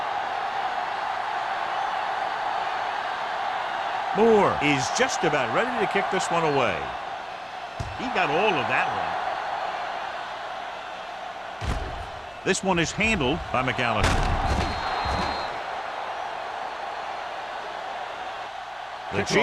Moore is just about ready to kick this one away. He got all of that one. This one is handled by McAllister. The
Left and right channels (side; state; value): both; identical; correlation 1.00